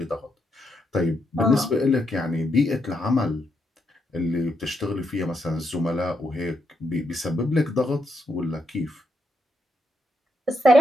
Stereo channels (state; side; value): normal; both; correlation 0.79